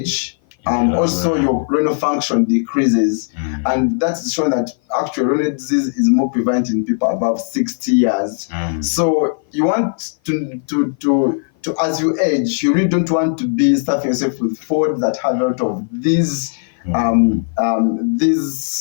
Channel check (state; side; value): silent; right; 55 dB below the other